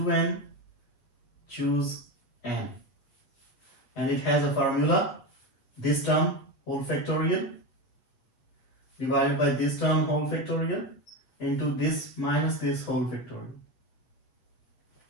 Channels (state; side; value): late; right; 8.1 ms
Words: choose n. And it has a formula. This term whole factorial divided by this term whole factorial into this minus this whole factorial.